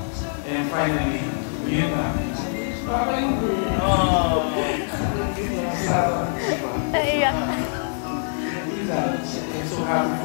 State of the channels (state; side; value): silent; right; 63 dB below the other